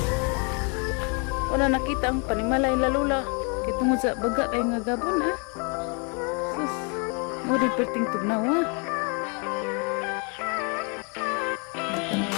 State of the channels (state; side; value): quieter; right; 35.9 dB